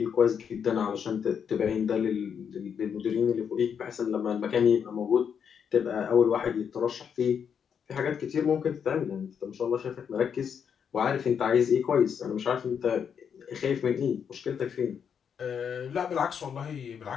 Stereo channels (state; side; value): quieter; right; 7.4 dB